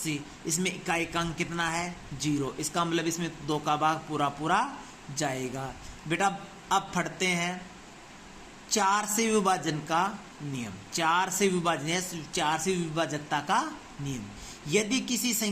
इसमें इकाई का अंक कितना है, 0, इसका मतलब इसमें 2 का भाग पूरा जाएगा। बेटा अब पढ़ते हैं 4 से विभाजन का नियम, 4 से विभाजन, 4 से विभाजकता का नियम। यदि किसी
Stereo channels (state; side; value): identical; both; correlation 1.00